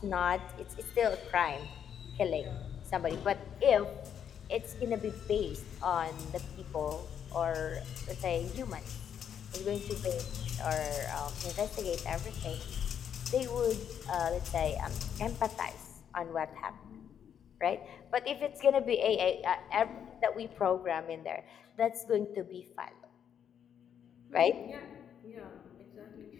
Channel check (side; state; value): right; quieter; 8.6 dB